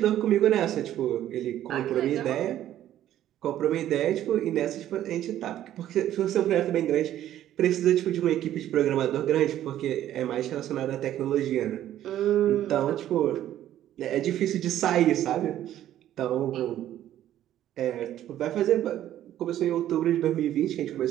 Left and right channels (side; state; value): left; quieter; 12.2 dB